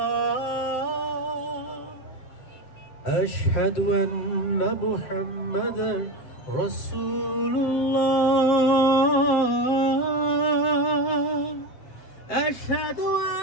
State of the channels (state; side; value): late; right; 7.7 ms